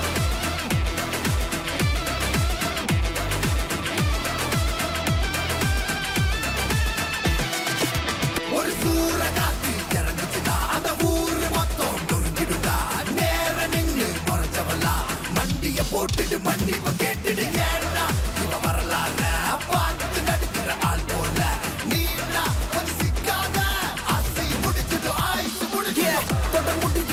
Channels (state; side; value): identical; both; correlation 1.00